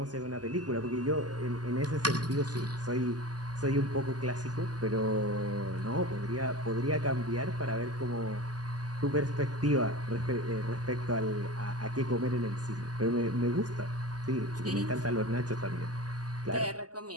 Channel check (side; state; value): left; late; 0.69 ms